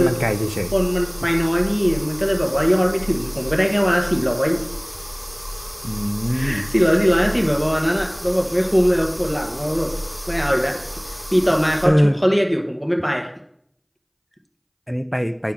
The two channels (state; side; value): identical; both; correlation 1.00